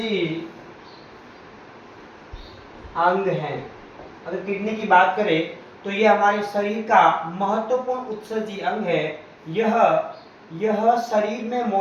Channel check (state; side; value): identical; both; correlation 1.00